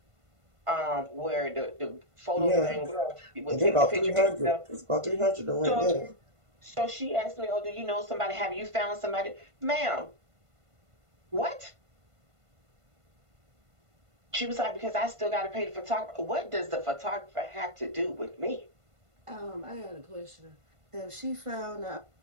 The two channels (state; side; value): late; left; 1.5 ms